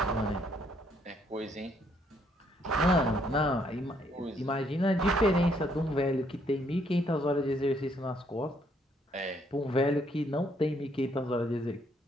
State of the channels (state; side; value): normal; both; correlation 0.69